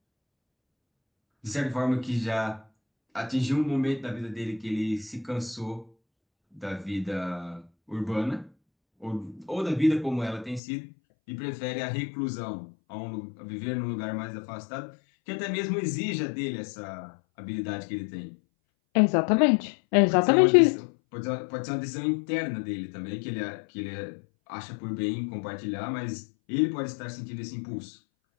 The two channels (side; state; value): right; drops out; at 10.6 s